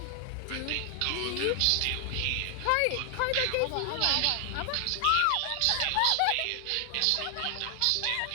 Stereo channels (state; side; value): different; both; correlation 0.00